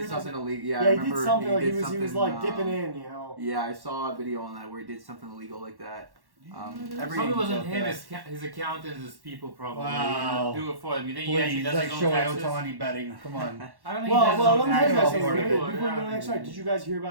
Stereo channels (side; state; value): left; late; 1.1 ms